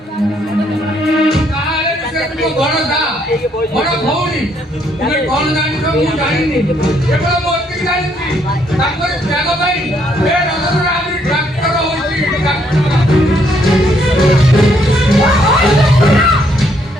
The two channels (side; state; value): both; normal; correlation 0.70